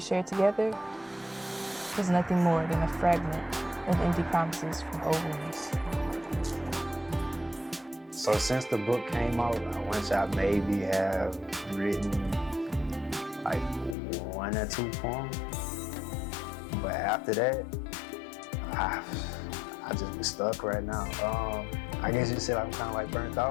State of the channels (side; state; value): right; drops out; at 14.0 s